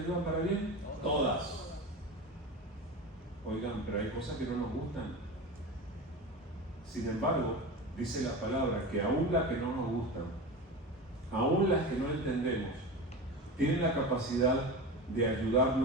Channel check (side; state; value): both; normal; correlation 0.27